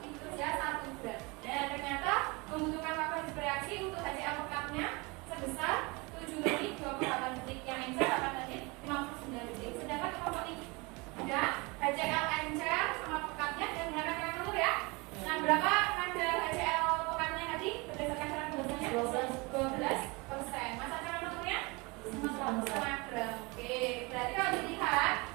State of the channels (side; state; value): left; quieter; 26.5 dB